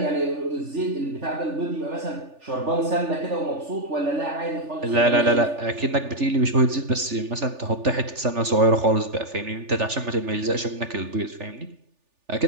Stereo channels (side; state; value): left; late; 3.4 ms